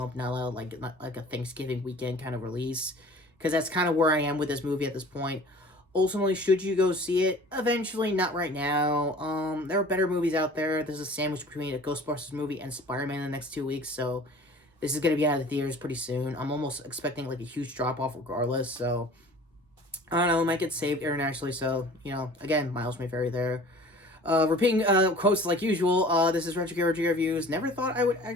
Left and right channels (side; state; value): both; normal; correlation 0.46